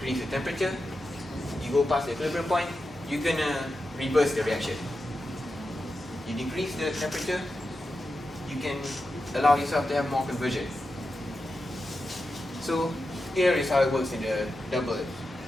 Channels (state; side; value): normal; both; correlation 0.90